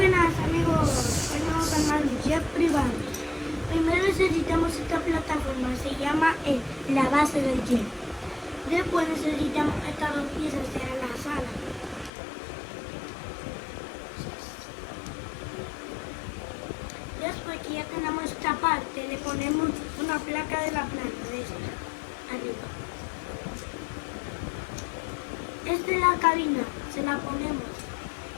amigos, hoy vamos a armar un jet privado. Primero necesitamos esta plataforma, se llama la base del jet. Después necesitamos estas dos piezas, que eran las alas. Después que ya tenemos esta parte, le ponemos una placa de la planta de esta, arriba. Esta es la cabina, se la ponemos.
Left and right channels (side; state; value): right; drops out; at 12.1 s